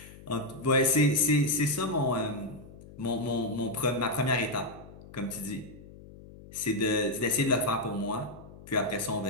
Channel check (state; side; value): noise; left; hum, 18 dB below the sound